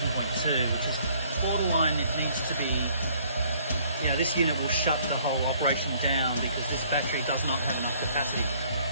which is borderline. It needs to be, you know, this unit will shut the whole operation down because this battery does not have enough capacity.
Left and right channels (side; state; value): both; inverted; correlation -0.60